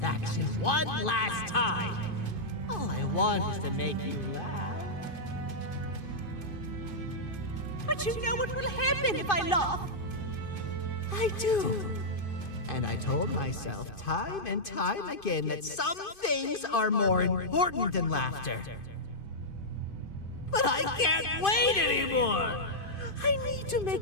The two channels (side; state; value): right; late; 2.5 ms